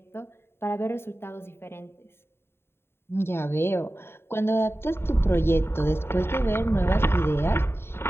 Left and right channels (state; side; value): late; right; 0.11 ms